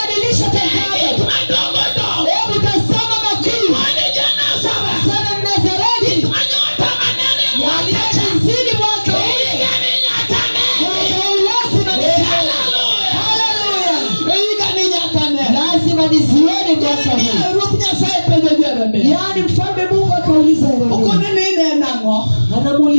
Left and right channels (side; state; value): both; inverted; correlation -1.00